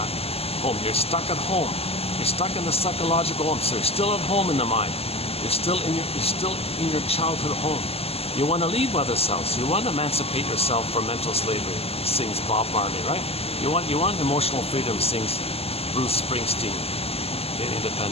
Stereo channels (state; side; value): late; right; 0.29 ms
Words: Home. You're stuck at home. You're stuck in the psychological home. So you're still at home in the mind. You're still in your childhood home. You want to leave mother's house. You want to emancipate yourself from mental slavery, sings Bob Marley, right? You want emotional freedom, sings Bruce Springsteen in